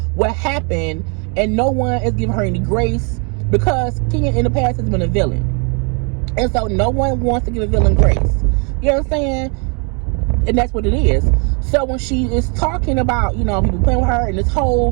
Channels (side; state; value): left; quieter; 36.2 dB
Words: what happened, and no one is giving her any grace because Kenya in the past has been a villain. And so no one wants to give a villain grace. You know what I'm saying? And that's what it is. So when she is talking about, people playing with her and this